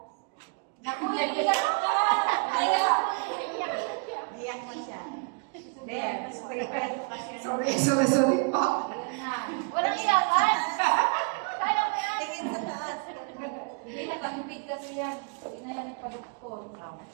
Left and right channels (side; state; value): left; quieter; 35.3 dB